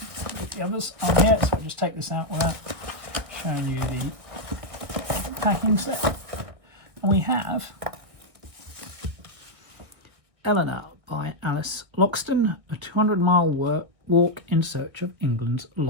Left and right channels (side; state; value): left; late; 1.8 ms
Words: the others on here, so I'll just take this out without showing you the packing set. And we have Eleanor by Alice Loxton, a 200-mile walk in search of England's